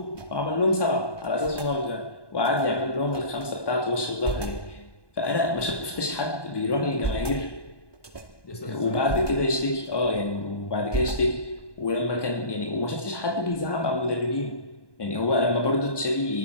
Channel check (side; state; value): right; late; 1.2 ms